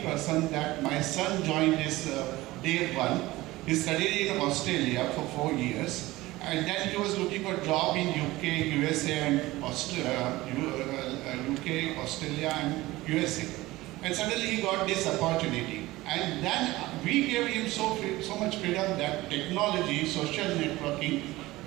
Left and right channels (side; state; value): left; quieter; 18.7 dB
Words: person that my son joined this day one. He studied in Australia for 4 years. And then he was looking for a job in UK, USA and UK, Australia and USA. And suddenly he got this opportunity. And then we gave him so much freedom that technology, social networking,